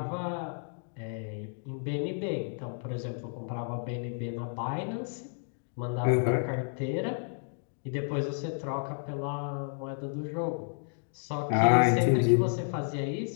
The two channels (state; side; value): silent; right; 57 dB below the other